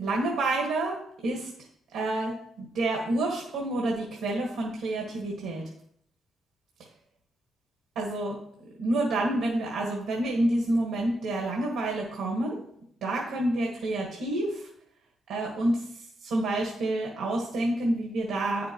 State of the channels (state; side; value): normal; both; correlation 0.80